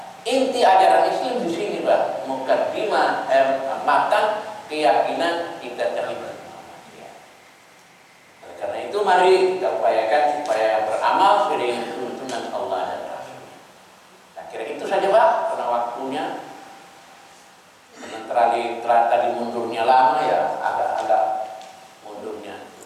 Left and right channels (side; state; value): both; identical; correlation 1.00